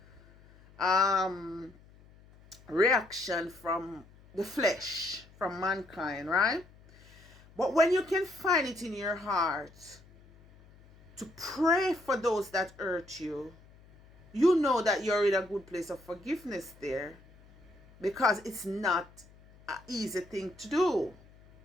reaction from the flesh, from mankind, right? But when you can find it in your heart to pray for those that hurt you, you know that you're in a good place of forgiveness there, because it's not an easy thing to do,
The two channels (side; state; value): left; noise; hum, 25 dB below the sound